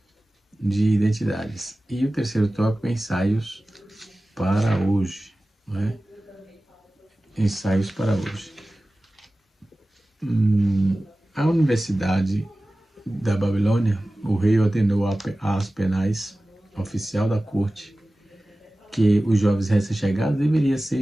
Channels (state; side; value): normal; both; correlation 0.97